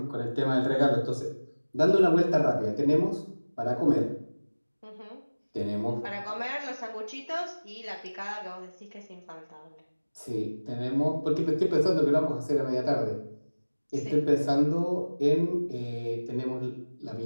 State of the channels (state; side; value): inverted; both; correlation -1.00